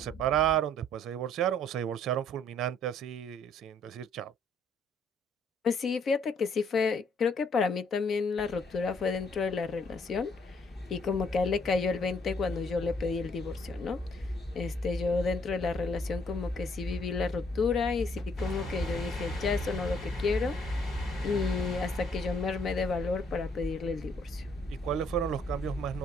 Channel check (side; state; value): both; normal; correlation 0.66